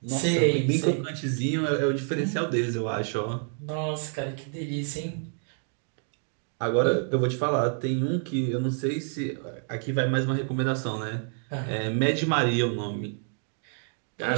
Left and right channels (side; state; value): left; silent; 59 dB below the other